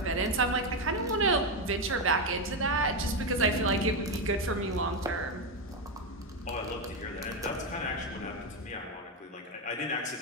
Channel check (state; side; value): normal; both; correlation 0.08